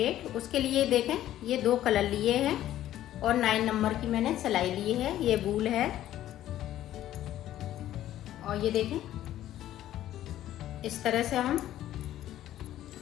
उसके लिए देखें ये 2 कलर लिए हैं और 9 नंबर की मैंने सिलाई ली है। ये वूल है और ये देखें इस तरह से हम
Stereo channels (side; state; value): right; quieter; 12.9 dB